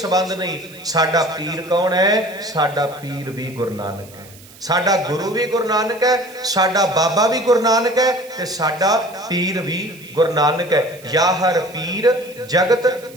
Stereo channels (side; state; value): right; noise; hiss, 22 dB below the sound